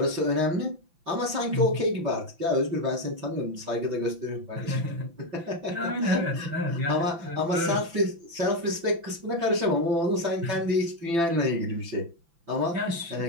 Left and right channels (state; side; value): late; left; 5.9 ms